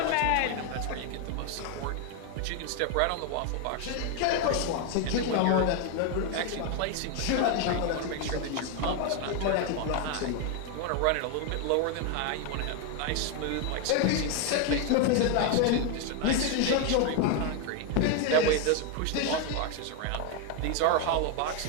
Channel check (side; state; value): both; different; correlation 0.01